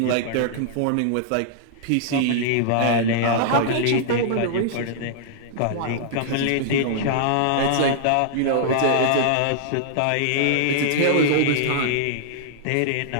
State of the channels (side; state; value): both; different; correlation -0.01